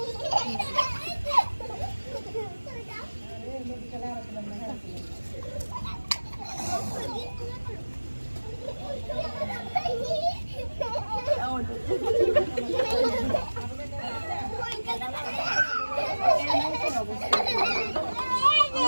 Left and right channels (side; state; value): both; inverted; correlation -1.00